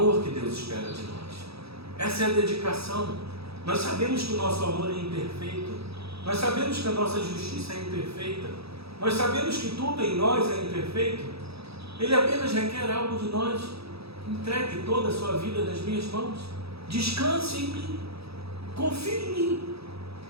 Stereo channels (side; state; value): left; late; 0.77 ms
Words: que Deus espera de nós. Essa é a dedicação. Nós sabemos que o nosso amor é imperfeito. Nós sabemos que a nossa justiça é imperfeita. Nós sabemos que tudo em nós é imperfeito. Ele apenas requer algo de nós. Entregue toda a sua vida nas minhas mãos. Descanse em mim. Confie em mim.